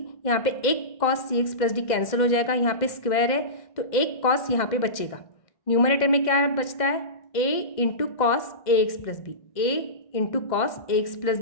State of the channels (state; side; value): late; right; 2.0 ms